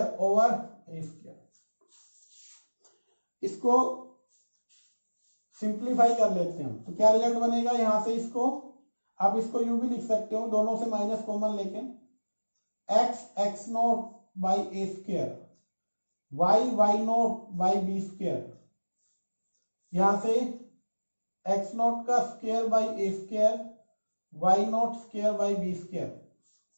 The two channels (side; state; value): both; inverted; correlation -1.00